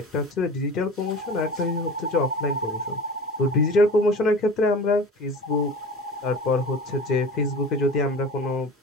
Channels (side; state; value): both; normal; correlation 0.37